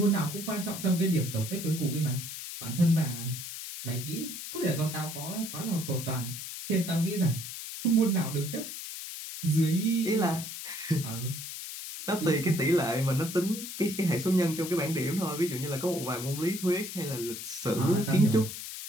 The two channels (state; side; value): noise; left; hiss, 8 dB below the sound